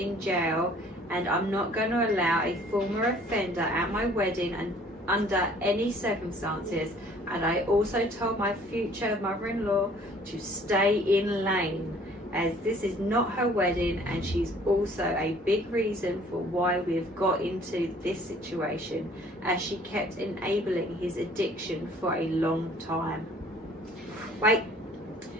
jail, and I'm not going to allow a former offender at my wedding and under any circumstances. And I also told my future mother-in-law to stay in lane, as this is not her wedding, and she's also a big reason for why we've got into this situation, as she kept enabling his addiction for a long time. Wait.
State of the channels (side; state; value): both; normal; correlation 0.55